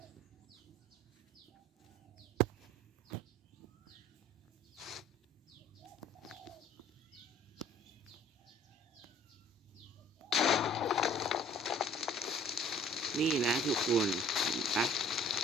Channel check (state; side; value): normal; both; correlation 0.52